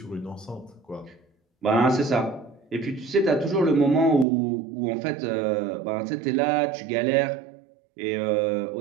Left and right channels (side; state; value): left; drops out; at 4.2 s